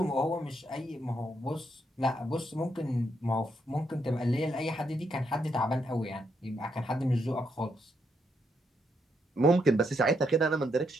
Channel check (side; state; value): both; normal; correlation 0.78